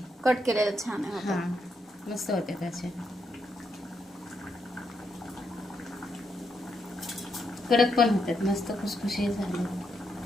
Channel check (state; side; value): normal; both; correlation 0.80